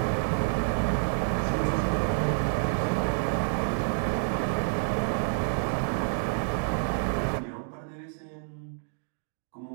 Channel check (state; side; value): silent; left; digital silence